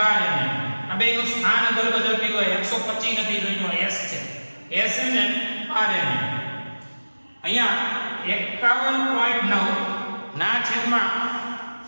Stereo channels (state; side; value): inverted; both; correlation -1.00